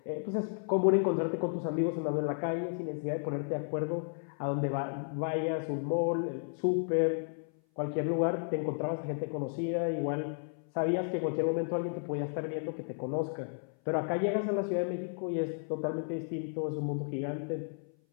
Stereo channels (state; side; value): silent; right; 56 dB below the other